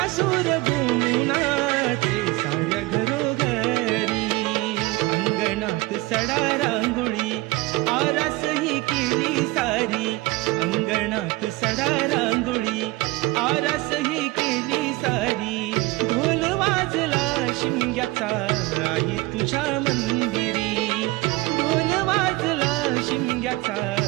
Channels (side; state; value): left; quieter; 21.0 dB